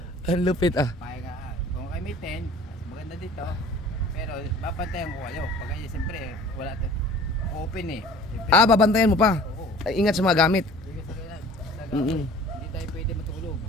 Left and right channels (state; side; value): normal; both; correlation 0.47